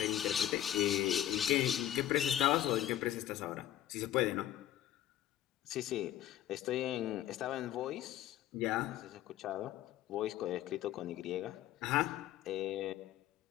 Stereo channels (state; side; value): quieter; right; 12.6 dB